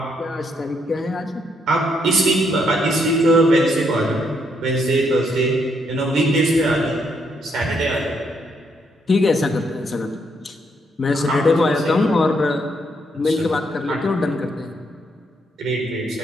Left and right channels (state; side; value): normal; both; correlation 0.74